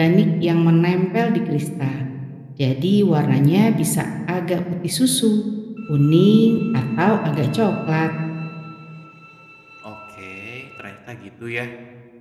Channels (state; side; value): identical; both; correlation 1.00